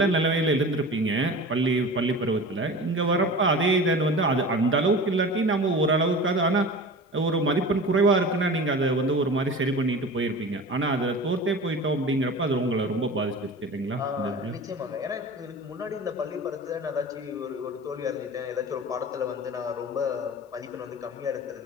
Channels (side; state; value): both; normal; correlation 0.35